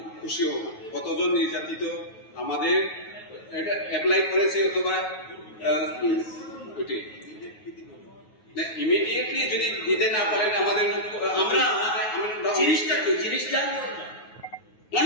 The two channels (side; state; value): right; late; 9.3 ms